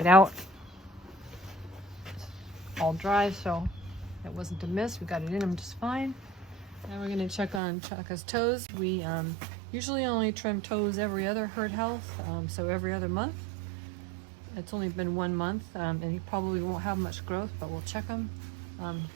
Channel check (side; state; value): left; drops out; at 7.6 s